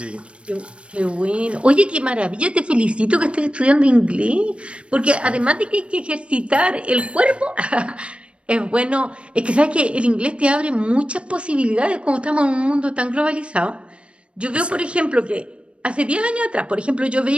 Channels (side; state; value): left; late; 0.059 ms